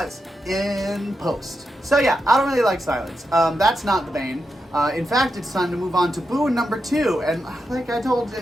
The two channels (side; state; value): both; normal; correlation 0.86